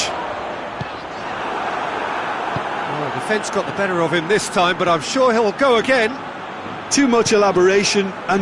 Well, defence got the better of him this time, but I'm sure he'll go again. Too much elaboration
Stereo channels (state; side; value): identical; both; correlation 1.00